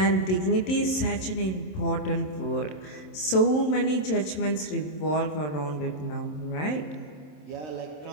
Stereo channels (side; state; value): right; late; 27 ms